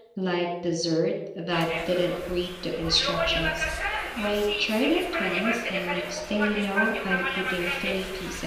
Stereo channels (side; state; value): both; identical; correlation 1.00